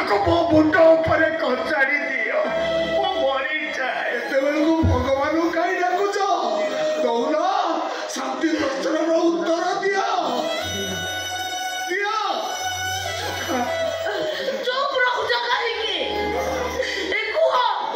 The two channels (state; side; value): identical; both; correlation 1.00